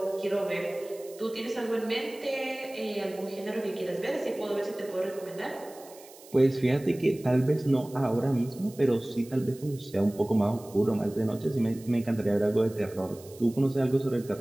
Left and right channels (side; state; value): right; noise; hiss, 21 dB below the sound